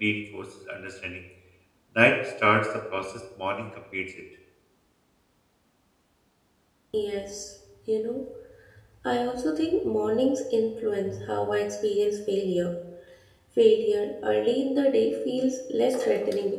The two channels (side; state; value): both; identical; correlation 1.00